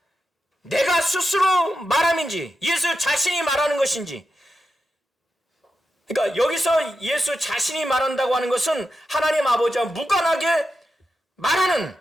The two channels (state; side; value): normal; both; correlation 0.89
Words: 내가 스스로 말함인지, 예수 자신이 말하는 것인지. 그러니까 여기서 예수 자신이 말한다고 하는 것은 하나님 아버지와 무관하게 말하는,